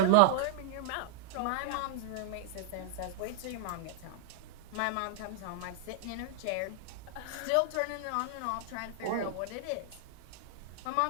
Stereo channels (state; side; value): different; both; correlation -0.01